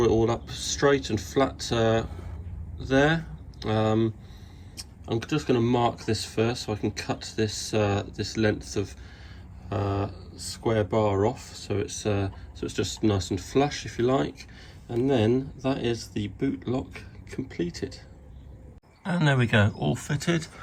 all up straight and flat there. I'm just going to mark this first so I can cut this this length of square bar off, so it's just nice and flush, if you like, and then that is the boot lock completed. And there we go, all fitted.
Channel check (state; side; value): identical; both; correlation 1.00